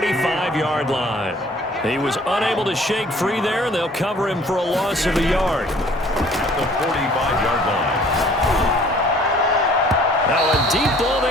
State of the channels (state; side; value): normal; both; correlation 0.54